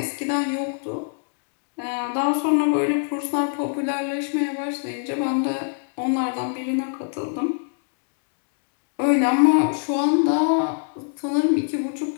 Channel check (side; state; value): right; silent; digital silence